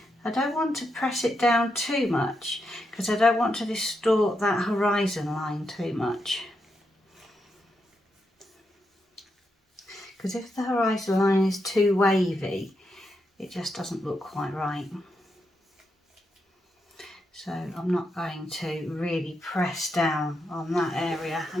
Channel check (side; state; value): both; normal; correlation 0.83